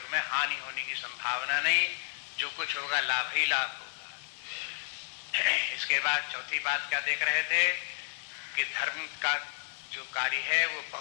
में हानि होने की संभावना नहीं, जो कुछ होगा लाभ ही लाभ होगा। इसके बाद चौथी बात क्या देख रहे थे कि धर्म का जो कार्य है वो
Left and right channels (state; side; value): silent; right; 57 dB below the other